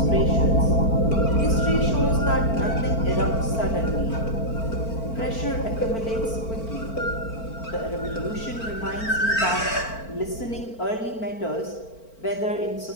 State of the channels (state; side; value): late; right; 4.5 ms